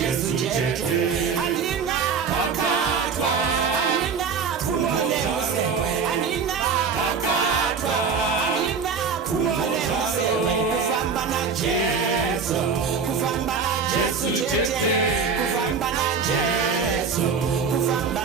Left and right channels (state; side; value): quieter; left; 5.8 dB